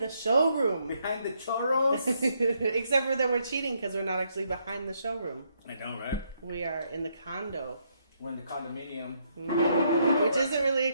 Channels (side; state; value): both; inverted; correlation -0.75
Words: the showroom. Behind the churros? Except for that we're cheating because we're not actually behind the showroom. I know, right? We are in the condo. We're in the condominium. Which isn't really a